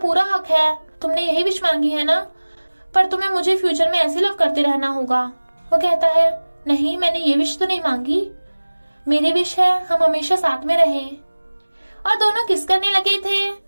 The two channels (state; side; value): inverted; both; correlation -1.00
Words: हक है, तुमने यही विश मांगी है ना, पर तुम्हें मुझे फ्यूचर में ऐसे लव करते रहना होगा। वो कहता है, नहीं मैंने ये विश तो नहीं मांगी, मेरी विश है हम हमेशा साथ में रहें। और दोनों किस करने लगे थे।